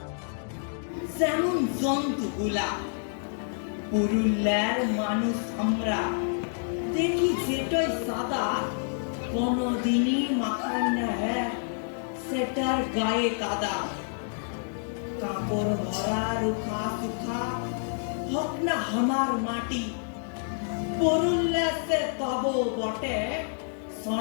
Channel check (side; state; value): right; silent; digital silence